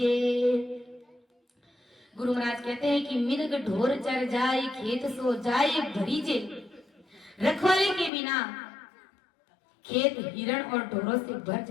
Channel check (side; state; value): right; drops out; at 8.1 s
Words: गुरु महाराज कहते हैं कि मिर्ग ढोर चर जाए खेत सो जाए भरी जे, रखवाले के बिना खेत हिरण और ढोरों से भर